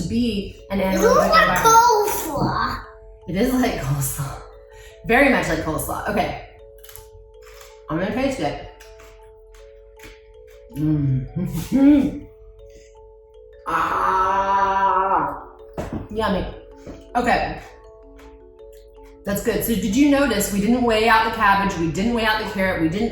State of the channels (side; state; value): both; identical; correlation 1.00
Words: be an anaerobic It looks like environment. coleslaw. It is like coleslaw. Very much like coleslaw. Okay. I'm going to taste it. Ah, yummy. Okay. That's good. So did you notice we didn't weigh out the cabbage, we didn't weigh out the carrot, we